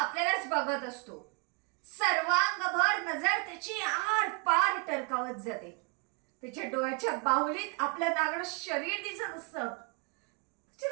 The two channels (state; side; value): quieter; left; 32.5 dB